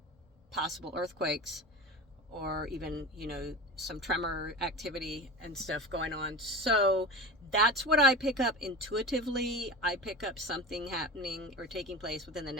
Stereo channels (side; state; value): both; normal; correlation 0.30